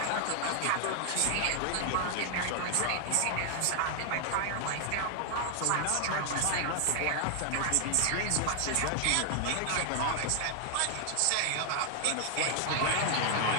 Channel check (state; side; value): different; both; correlation 0.00